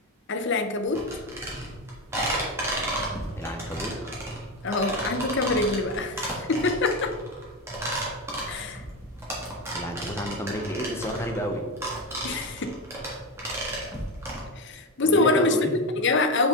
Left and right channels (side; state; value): both; normal; correlation 0.15